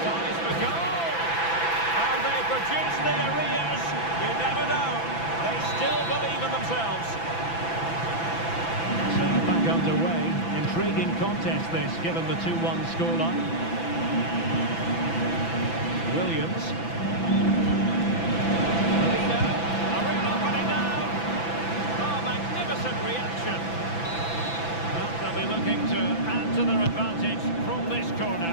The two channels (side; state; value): right; late; 6.0 ms